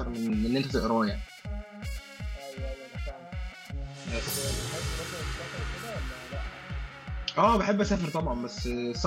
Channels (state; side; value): identical; both; correlation 1.00